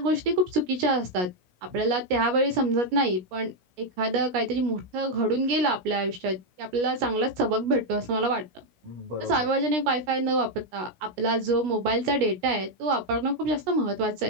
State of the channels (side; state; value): left; late; 17 ms